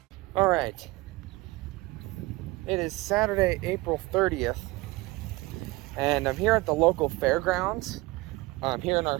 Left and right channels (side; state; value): left; quieter; 21.7 dB